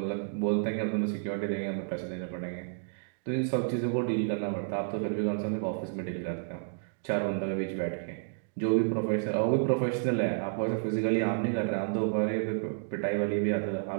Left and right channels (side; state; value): left; silent; digital silence